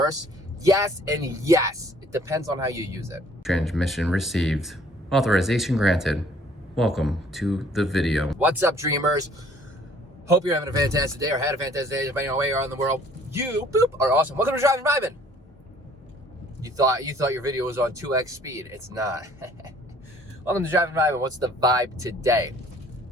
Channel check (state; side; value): normal; both; correlation 0.57